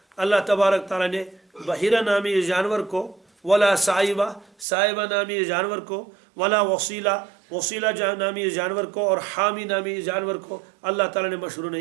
اللہ تبارک تعالیٰ نے بحیرہ نامی جانور کو، ولا سائبہ نامی جانور کو، ولا وسیلہ نامی جانور کو، اور حامی نامی جانور کو اللہ تعالیٰ نے مشروع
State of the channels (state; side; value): drops out; left; at 4.7 s